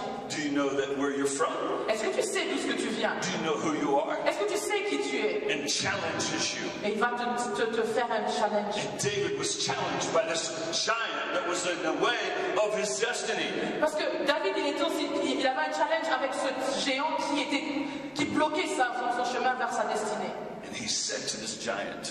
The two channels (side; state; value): both; identical; correlation 1.00